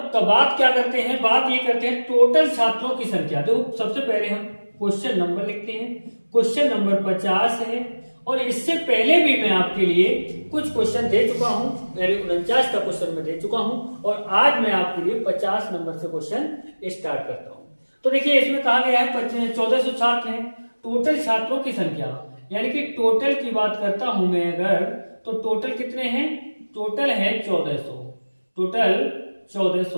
बात क्या करते हैं, बात ये करते हैं टोटल छात्रों की संख्या। तो सबसे पहले हम क्वेश्चन नंबर लिखते हैं। क्वेश्चन नंबर 50 है। और इससे पहले भी मैं आपके लिए कुछ क्वेश्चन दे चुका हूं। मेरे 49 का क्वेश्चन मैं दे चुका हूं, और आज मैं आपके लिए 50 नंबर से क्वेश्चन स्टार्ट करता हूं। तो देखिए इसमें कहा गया है 1400 छात्र हैं। टोटल छात्रों की संख्या, यानी कि टोटल की बात करता हूं मैं अगर, तो टोटल कितने हैं? टोटल है 1400। टोटल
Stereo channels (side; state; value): both; inverted; correlation -1.00